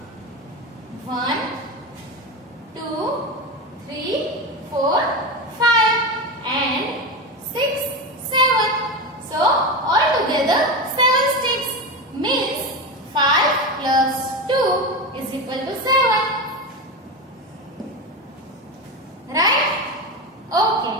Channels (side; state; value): both; normal; correlation 0.19